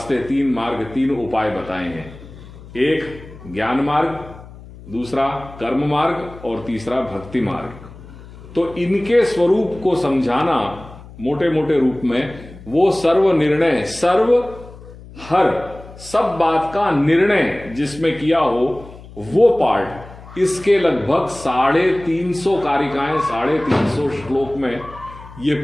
3 मार्ग, 3 उपाय बताए हैं। एक ज्ञान मार्ग, दूसरा कर्म मार्ग और तीसरा भक्ति मार्ग। तो इनके स्वरूप को समझाना मोटे मोटे रूप में, वो सर्व निर्णय, सर्व हर सब बात का निर्णय जिसमें किया हो वो पार्ट, इसके लगभग 350 कारिकाएं, 350 श्लोक में ये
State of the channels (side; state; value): left; noise; hum, 18 dB below the sound